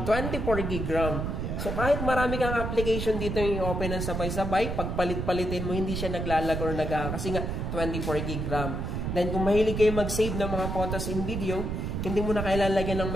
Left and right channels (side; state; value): right; noise; rumble, 3 dB below the sound